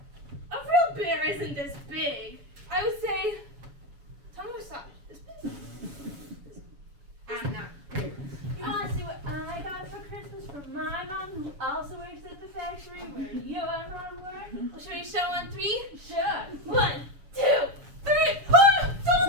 a real bear isn't this big. I would say, tell me what size. This big. I'm not. You wanna see what I got for Christmas from my mom, who also works at the factory where your mom works? Well, should we show on 3? Sure. 1, 2, 3. Oh,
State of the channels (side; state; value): left; late; 7.0 ms